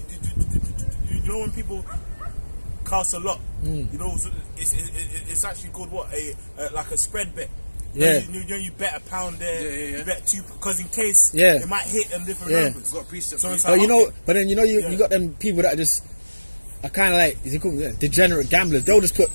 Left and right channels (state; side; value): inverted; both; correlation -1.00